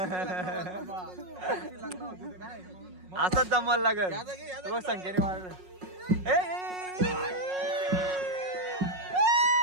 असंच जमल लागल बघ संख्येने मारलं.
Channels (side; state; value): left; late; 5.5 ms